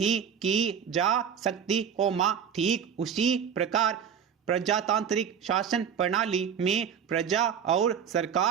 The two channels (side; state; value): left; quieter; 7.6 dB